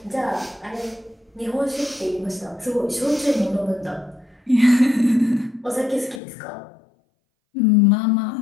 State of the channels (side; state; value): right; drops out; at 6.2 s